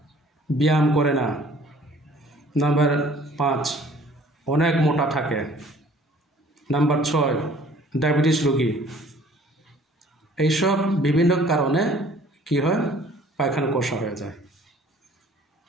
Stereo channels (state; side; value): normal; both; correlation 0.54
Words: ব্যায়াম করে না। নাম্বার 5, অনেক মোটা থাকে। নাম্বার 6, ডায়াবেটিস রোগী। এইসব বিভিন্ন কারণে কি হয়? পায়খানা কষা হয়ে যায়।